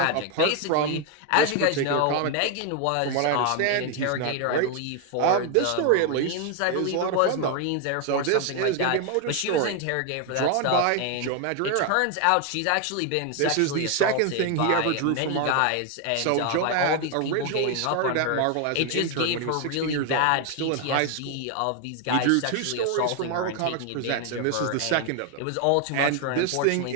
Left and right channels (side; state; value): both; different; correlation 0.01